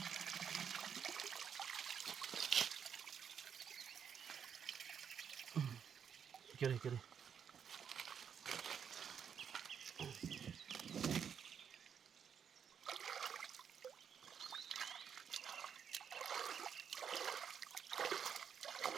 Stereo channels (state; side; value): quieter; left; 7.6 dB